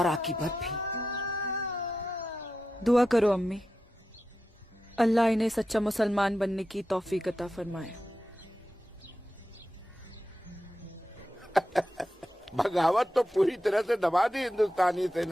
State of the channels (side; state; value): both; normal; correlation 0.89